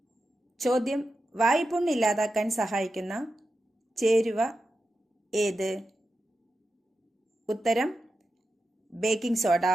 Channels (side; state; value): both; normal; correlation 0.90